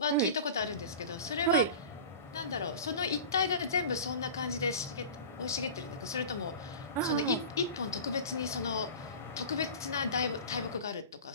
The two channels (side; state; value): both; inverted; correlation -0.34